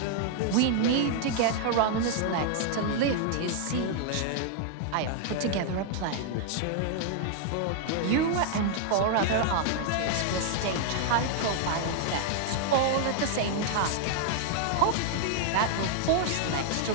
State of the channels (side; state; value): both; different; correlation 0.00